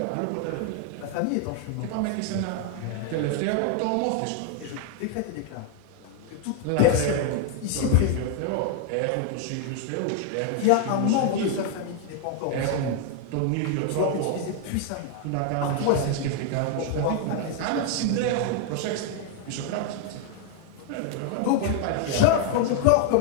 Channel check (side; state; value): both; different; correlation 0.00